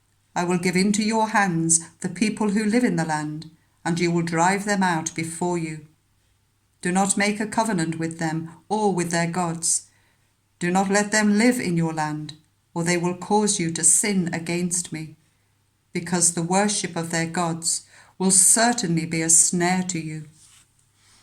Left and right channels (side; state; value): both; identical; correlation 1.00